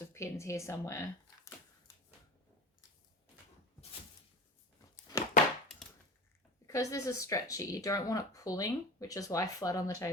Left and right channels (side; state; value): both; normal; correlation 0.32